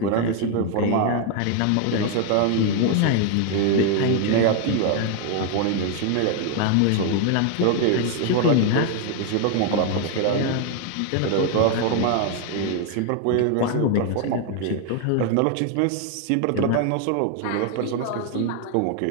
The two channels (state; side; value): different; both; correlation 0.00